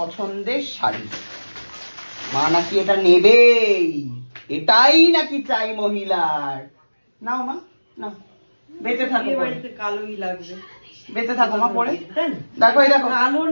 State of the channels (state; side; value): inverted; both; correlation -1.00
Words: শাড়ি, মা নাকি এটা নেবেই, এটাই নাকি চাই মহিলার। নাও মা নাও, বেঁচে থাকো, কালোই লাগবে, বেঁচে থাকো মা পরে। দেখো এই দেখো কালো